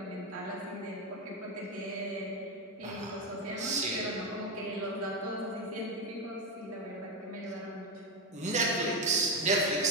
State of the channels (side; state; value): both; normal; correlation 0.10